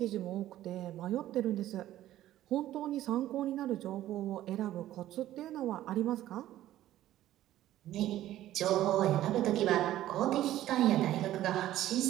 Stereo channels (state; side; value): quieter; left; 13.7 dB